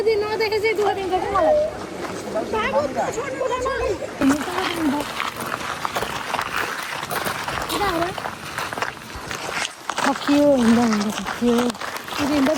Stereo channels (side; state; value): both; identical; correlation 1.00